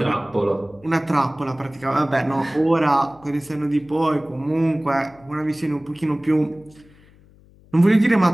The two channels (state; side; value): noise; left; hum, 27 dB below the sound